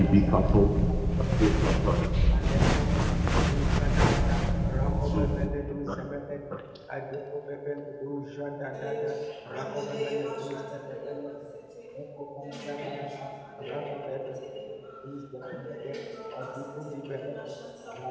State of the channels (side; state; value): both; identical; correlation 1.00